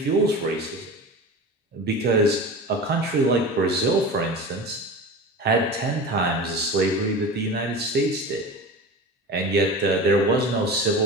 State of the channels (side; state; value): both; normal; correlation 0.31